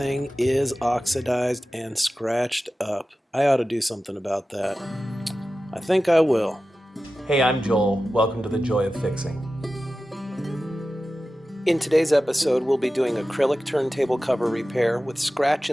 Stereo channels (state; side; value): normal; both; correlation 0.94